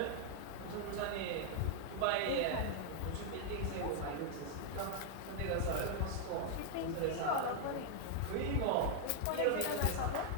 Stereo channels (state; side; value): different; both; correlation 0.00